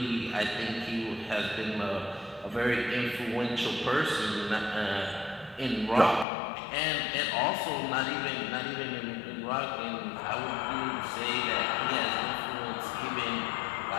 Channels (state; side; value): drops out; right; at 6.2 s